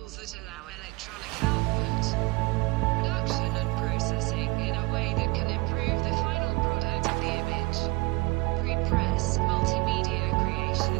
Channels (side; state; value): left; quieter; 24.9 dB